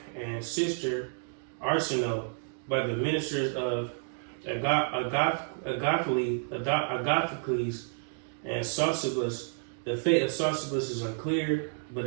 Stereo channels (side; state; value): left; silent; 58 dB below the other